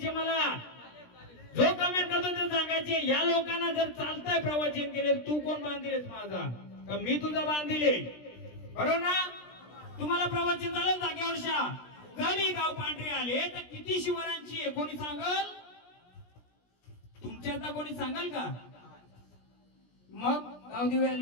मला जो कमेंट करतो ते सांगायचे या लोकांना जर चालतंय प्रवचन केले तू कोण बांधिलेस माझा का मी तुझा बांधिले बरोबर ना तुम्हाला प्रवचन झालं जागेवर शा गली गाव पांढरे आले तर किती शिवरांची आहे कोणी सांगल तुमच्या आता कोणी सांगाल का मग गावदेवी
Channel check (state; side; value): late; right; 17 ms